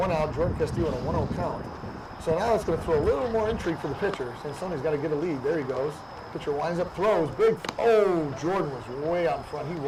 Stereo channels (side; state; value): both; identical; correlation 1.00